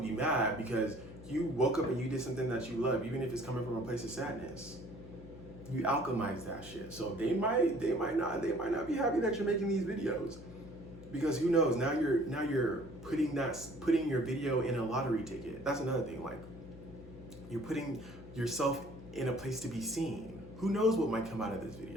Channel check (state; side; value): noise; left; hum, 16 dB below the sound